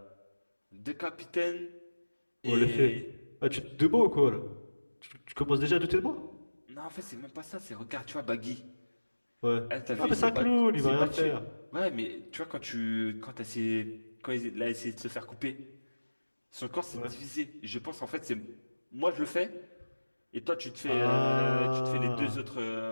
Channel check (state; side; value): inverted; both; correlation -1.00